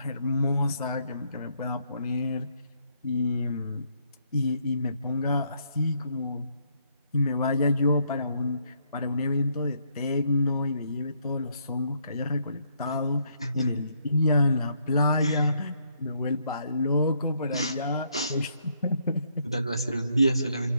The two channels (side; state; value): both; inverted; correlation -0.72